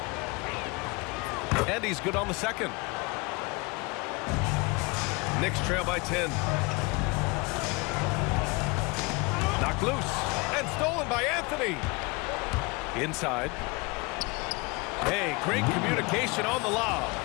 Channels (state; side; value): quieter; right; 27.0 dB